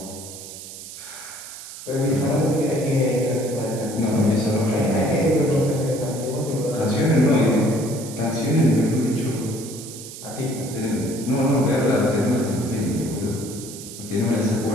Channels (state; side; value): noise; right; hiss, 13 dB below the sound